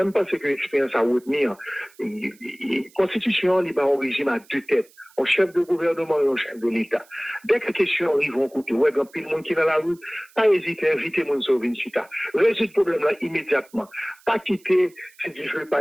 je pense que l'expérience à retenir, la Constitution, il y a un régime à deux têtes. Un chef de gouvernement et un chef de l'État. Dès que les questions arrivent, on écoute, ouais, quand il y a monde qui est dans la rue, pas hésiter, inviter mon sauver une chita. Résoudre le problème là immédiatement. Pas quitter, si du feu,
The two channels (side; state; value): right; noise; hiss, 28 dB below the sound